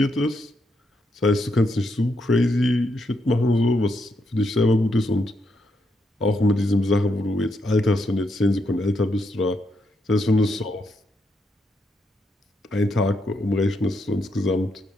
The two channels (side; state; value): both; normal; correlation 0.79